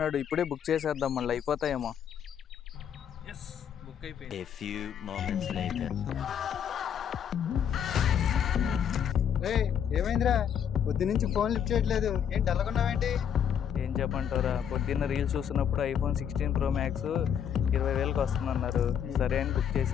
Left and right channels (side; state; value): right; quieter; 8.5 dB